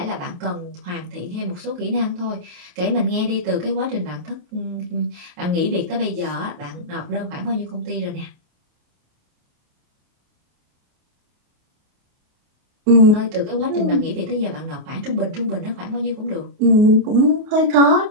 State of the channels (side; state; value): left; late; 28 ms